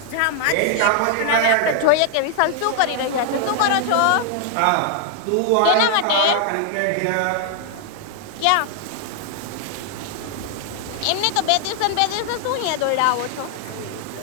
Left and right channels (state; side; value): different; both; correlation 0.00